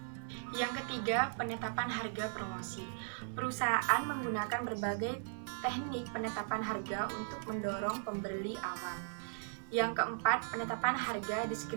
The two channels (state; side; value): silent; left; digital silence